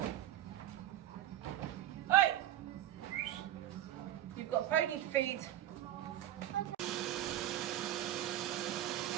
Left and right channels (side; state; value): left; quieter; 12.6 dB